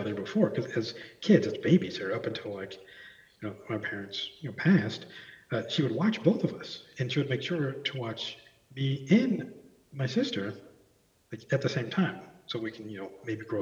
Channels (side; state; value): both; identical; correlation 1.00